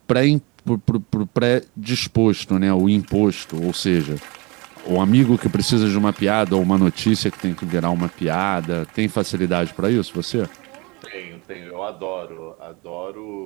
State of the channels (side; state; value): left; quieter; 26.6 dB